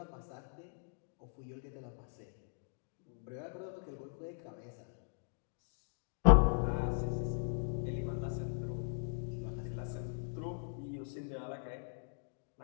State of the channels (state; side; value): silent; right; digital silence